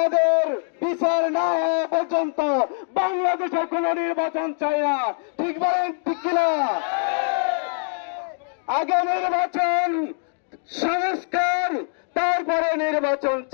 বিচার না হওয়া পর্যন্ত বাংলাদেশে কোন নির্বাচন চাই না। ঠিক বলেন, ঠিক কিনা? আগে নির্বাচন, সংস্কার, তারপরে নির্বাচন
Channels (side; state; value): right; silent; digital silence